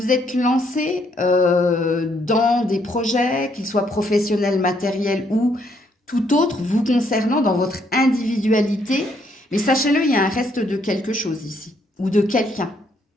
êtes lancé dans des projets, qu'ils soient professionnels, matériels ou tout autre, vous concernant dans votre individualité. Mais sachez-le, il y a un reste de quelque chose ici, ou de quelqu'un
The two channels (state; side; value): normal; both; correlation 0.71